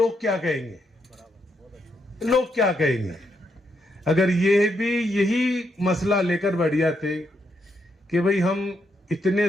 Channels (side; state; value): both; normal; correlation 0.79